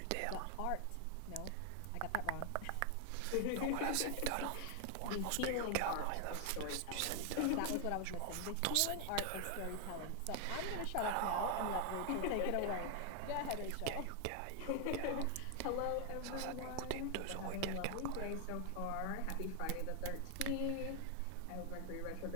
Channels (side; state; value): both; different; correlation 0.00